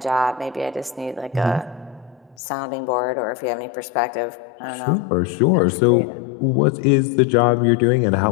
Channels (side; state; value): right; drops out; at 2.4 s